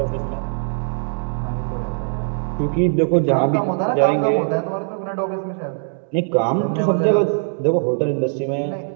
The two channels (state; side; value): silent; left; digital silence